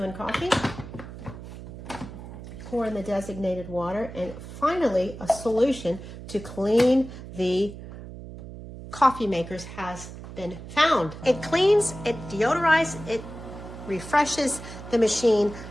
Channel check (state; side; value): noise; right; hum, 13 dB below the sound